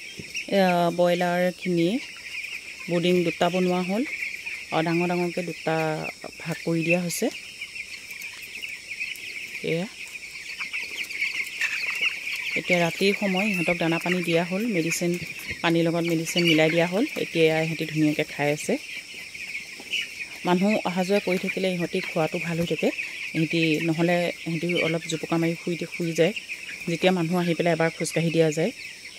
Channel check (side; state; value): both; identical; correlation 1.00